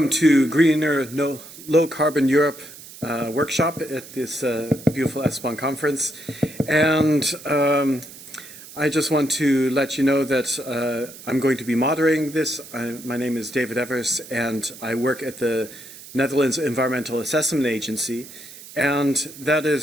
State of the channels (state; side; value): noise; right; hiss, 17 dB below the sound